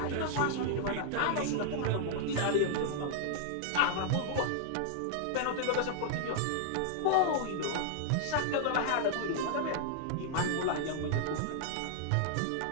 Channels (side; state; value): both; different; correlation -0.01